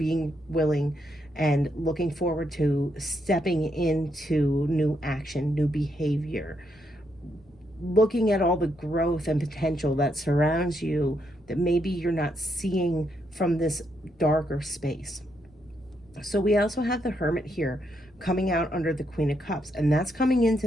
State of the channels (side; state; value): left; noise; rumble, 30 dB below the sound